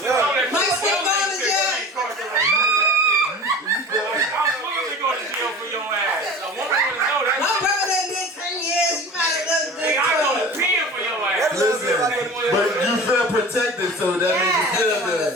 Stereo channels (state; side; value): normal; both; correlation 0.38